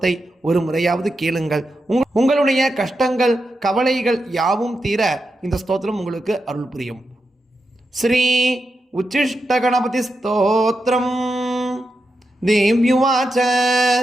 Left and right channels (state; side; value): normal; both; correlation 0.87